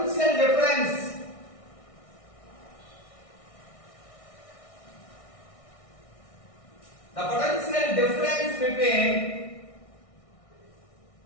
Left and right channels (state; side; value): late; right; 1.6 ms